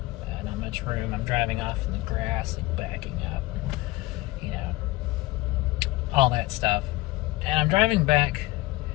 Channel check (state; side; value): quieter; right; 19.5 dB